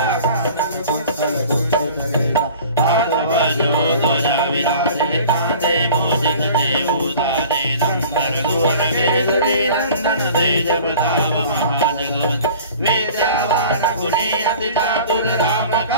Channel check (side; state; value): both; inverted; correlation -0.44